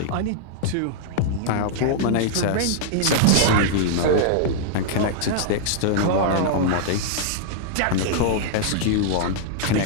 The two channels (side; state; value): both; different; correlation -0.01